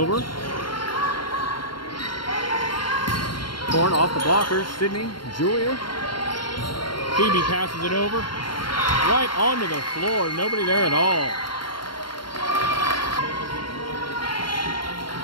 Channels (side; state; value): right; late; 0.72 ms